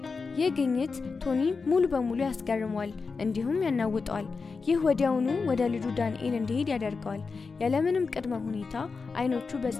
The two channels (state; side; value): quieter; right; 4.6 dB